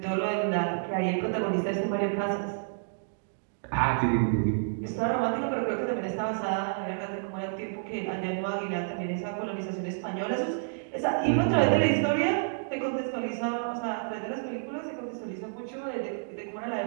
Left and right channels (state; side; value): silent; left; digital silence